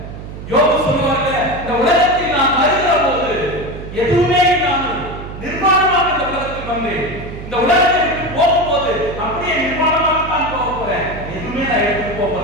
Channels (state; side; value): noise; right; hum, 11 dB below the sound